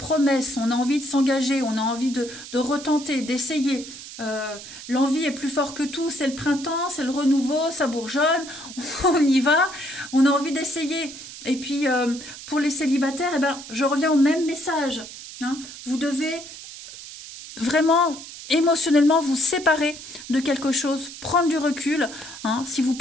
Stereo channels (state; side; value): noise; right; hiss, 13 dB below the sound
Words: on a envie de s'engager, on a envie de retenter, d'essayer. L'envie est plus fort que tout, c'est le printemps, c'est le renouveau, ça bourgeonne, on y va, on a envie d'essayer. Et puis pour les célibataires, eh ben, je reviens au même message, hein. Vous devez vraiment émotionnellement vous séparer de quelque chose, prendre du recul, hein. Si vous